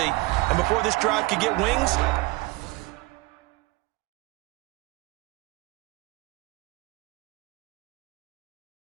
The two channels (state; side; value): quieter; left; 22.2 dB